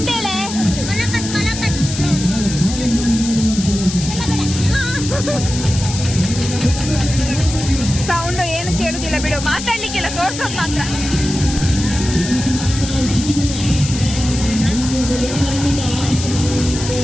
ಸೌಂಡ್ ಏನು ಕೇಳುದಿಲ್ಲ ಬಿಡು, ಮಾತಾಡ್ಲಿಕ್ಕೆಲ್ಲ ತೋರ್ಸೋದು ಮಾತ್ರ.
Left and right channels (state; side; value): noise; left; hiss, 8 dB below the sound